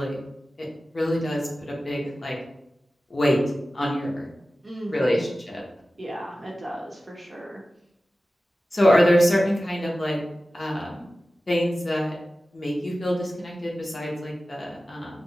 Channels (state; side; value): normal; both; correlation 0.95